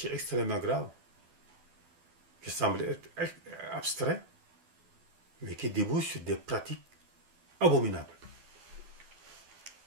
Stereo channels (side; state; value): left; late; 12 ms